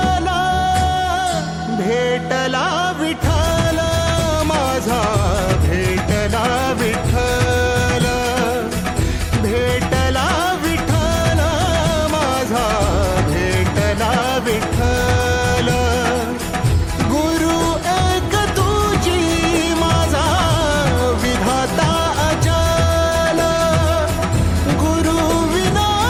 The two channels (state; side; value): identical; both; correlation 1.00